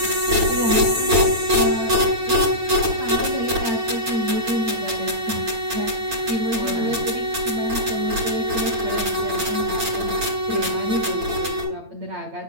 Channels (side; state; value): left; late; 8.8 ms